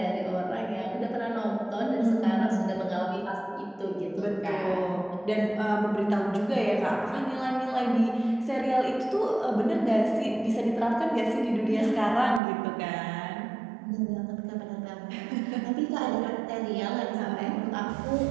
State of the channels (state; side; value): drops out; left; at 12.4 s